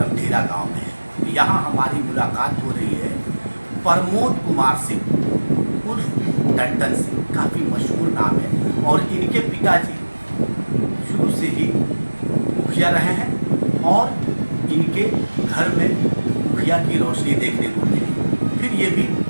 गांव में है। यहाँ हमारी मुलाकात हो रही है प्रमोद कुमार सिंह उर्फ टंटन सिंह, काफ़ी मशहूर नाम है। और इनके पिताजी शुरू से ही मुखिया रहे हैं और इनके घर में मुखिया की रोशनी देखने को मिली। फिर ये भी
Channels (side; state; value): both; inverted; correlation -1.00